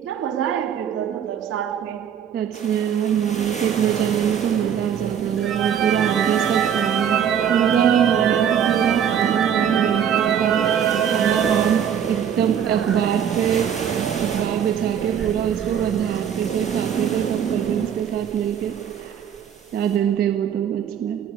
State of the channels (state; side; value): quieter; left; 8.6 dB